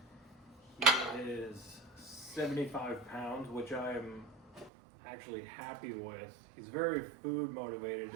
He is 75 pounds, which I'm actually happy with. He's very food motivated,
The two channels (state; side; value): drops out; left; at 4.7 s